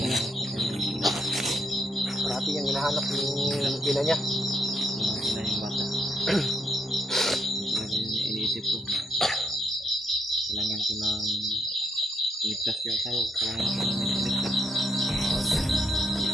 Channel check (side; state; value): both; normal; correlation 0.74